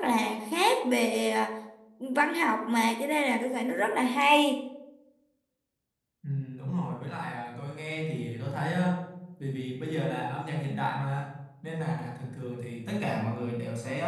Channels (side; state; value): both; identical; correlation 1.00